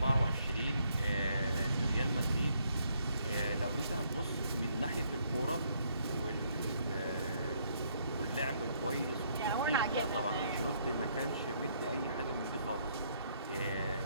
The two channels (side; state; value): both; inverted; correlation -0.70